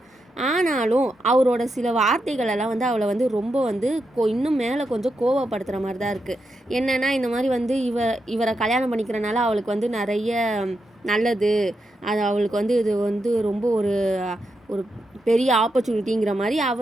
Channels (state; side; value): normal; both; correlation 0.85